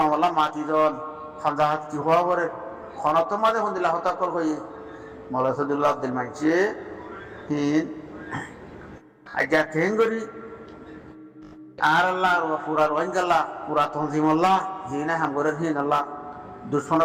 মাতি জন খামজা হাত কি হওয়া পরে খনত মাঝে হন্দিলা হতাকল হয়ে মৌলা সদুল্লাহ আব্দুল মানছে হিন আজ্ঞা কেন করি আর আল্লাহ পুরা রোহিঙ্গাল্লা পুরা তঞ্জিমল্লাহ হিনা হাঙ্গরের হিন আল্লাহ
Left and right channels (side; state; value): both; identical; correlation 1.00